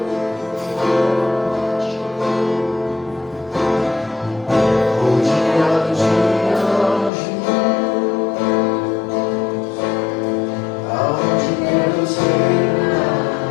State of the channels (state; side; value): drops out; right; at 7.1 s